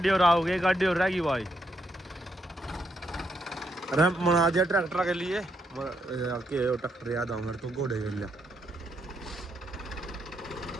और आओगे, गाड़ी और रहेगी भाई। रैंप बना दिया ट्रैक्टर के लिए, ट्रैक्टर याद आऊंगा तो घोड़े के लिए।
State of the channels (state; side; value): normal; both; correlation 0.78